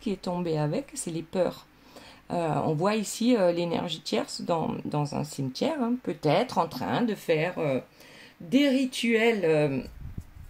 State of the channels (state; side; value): identical; both; correlation 1.00